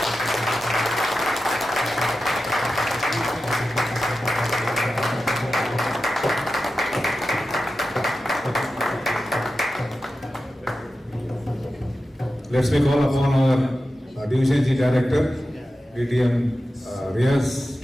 Let's make call upon our Division G Director, ATM Riaz,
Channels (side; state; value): both; normal; correlation 0.93